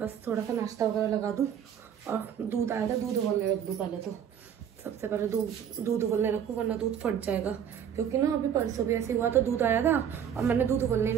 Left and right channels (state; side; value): quieter; left; 8.7 dB